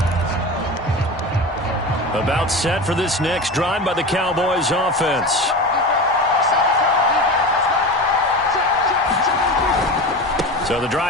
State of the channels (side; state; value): both; normal; correlation 0.28